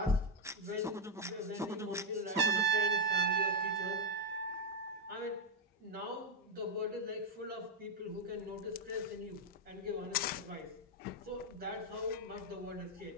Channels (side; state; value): both; normal; correlation 0.03